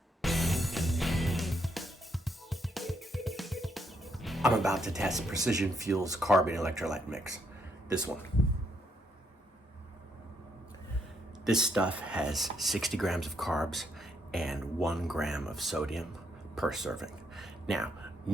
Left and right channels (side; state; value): both; normal; correlation 0.75